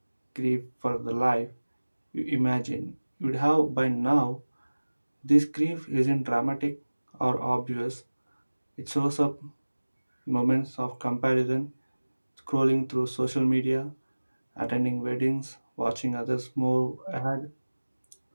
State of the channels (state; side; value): inverted; both; correlation -1.00